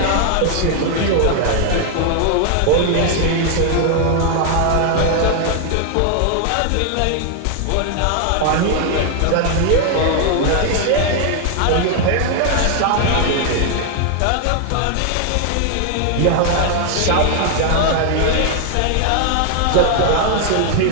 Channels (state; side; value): different; both; correlation 0.00